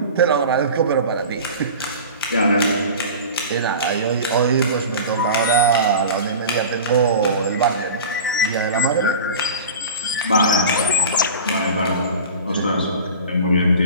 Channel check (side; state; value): both; inverted; correlation -0.35